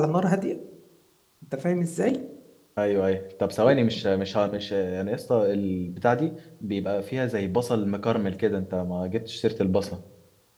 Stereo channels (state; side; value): identical; both; correlation 1.00